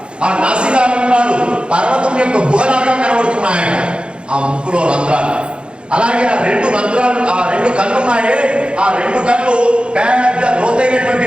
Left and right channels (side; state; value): left; late; 0.056 ms